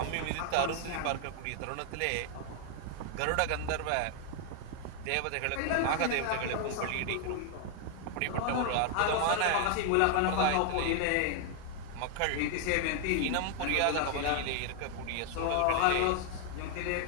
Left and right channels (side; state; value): both; different; correlation 0.00